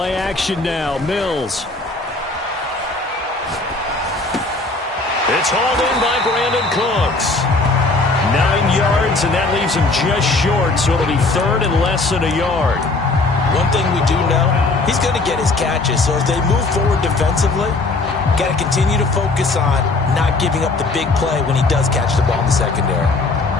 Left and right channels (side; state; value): right; quieter; 3.4 dB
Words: action now, Mills. It's hauled in by Brandon Cooks. 9 yards, and that leaves him just short, so it'll be third and less than a yard. One thing we do know, he's going to get his catches, so as they move forward defensively, got to continue to focus on not giving up the big play when he does catch the ball in the secondary.